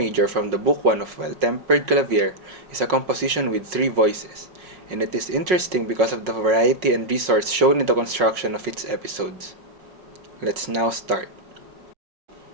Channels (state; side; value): late; left; 5.4 ms